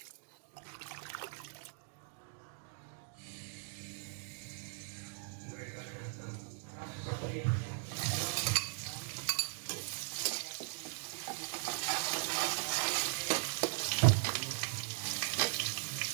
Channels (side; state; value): left; silent; 52 dB below the other